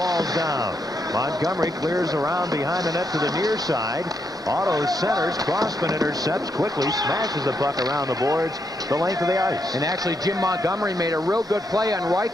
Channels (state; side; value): normal; both; correlation 0.79